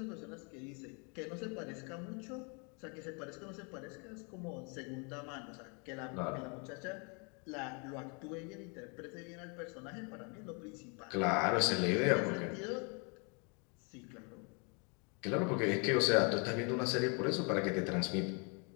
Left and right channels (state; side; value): quieter; right; 34.7 dB